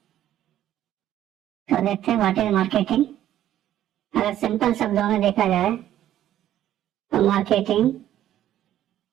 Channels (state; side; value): quieter; left; 12.1 dB